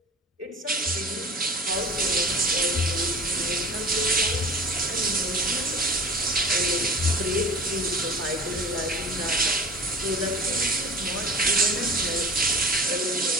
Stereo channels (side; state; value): both; normal; correlation 0.39